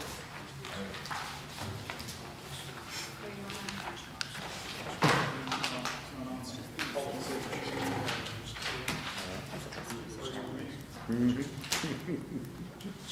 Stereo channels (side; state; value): both; identical; correlation 1.00